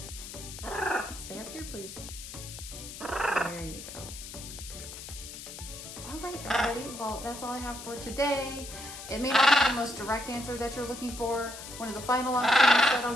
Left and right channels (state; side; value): noise; left; hiss, 11 dB below the sound